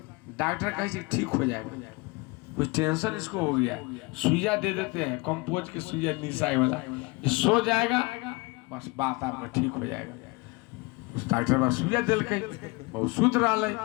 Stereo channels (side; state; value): right; quieter; 25.9 dB